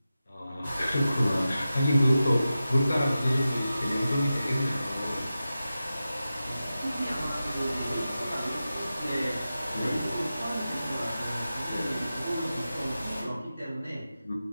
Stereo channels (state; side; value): inverted; both; correlation -0.93